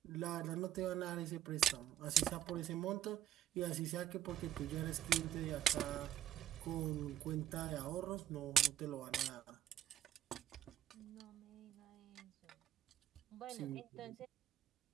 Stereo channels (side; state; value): left; quieter; 11.6 dB